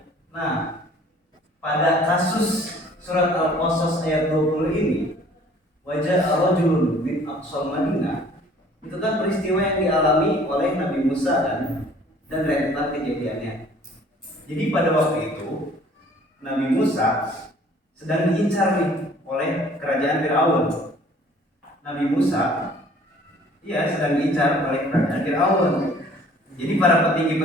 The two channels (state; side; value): normal; both; correlation 0.54